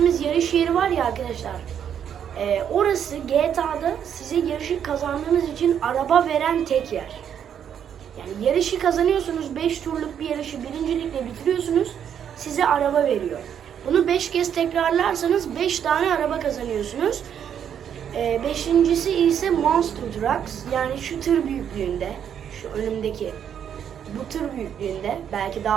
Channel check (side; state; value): left; quieter; 8.8 dB